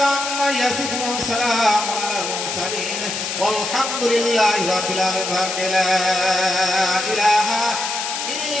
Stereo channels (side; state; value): left; noise; hiss, 4 dB below the sound